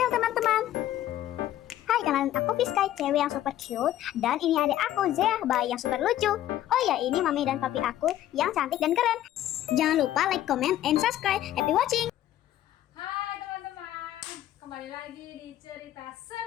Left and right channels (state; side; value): quieter; right; 12.9 dB